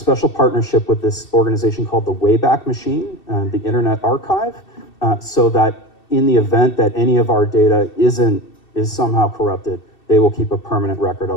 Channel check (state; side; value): late; right; 2.7 ms